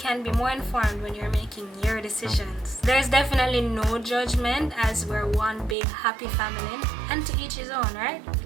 be more informed when you're making your decisions. There's definitely no judgment, as we're one big happy family, and to each his own, right?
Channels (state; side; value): drops out; left; at 5.8 s